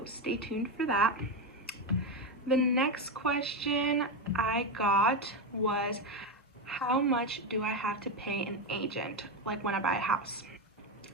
stay tuned for that. The next question I got was, how much do I have to pay an agent, like when I buy a house?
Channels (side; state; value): both; normal; correlation 0.11